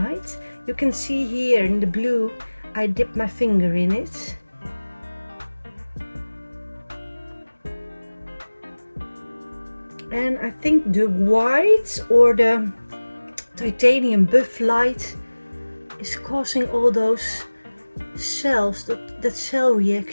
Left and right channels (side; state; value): both; inverted; correlation -1.00